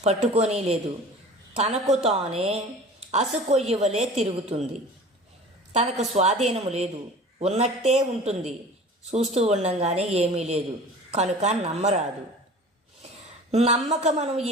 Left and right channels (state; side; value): normal; both; correlation 0.42